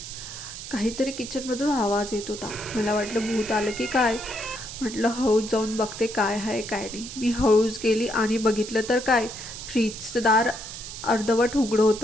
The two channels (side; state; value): right; noise; hiss, 10 dB below the sound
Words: काहीतरी किचनमधून आवाज येत होता. मला वाटलं भूत आलं की काय. म्हटलं हळूच जाऊन बघते काय आहे काय नाही. मी हळूच गेली आणि बघितलं तर काय, फ्रीजचं दार अर्धवट उघडं